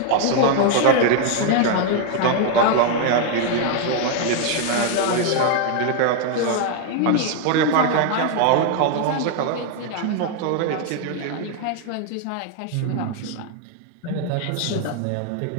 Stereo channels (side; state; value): both; different; correlation 0.00